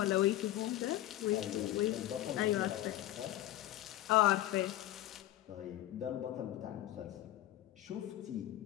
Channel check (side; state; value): right; quieter; 14.5 dB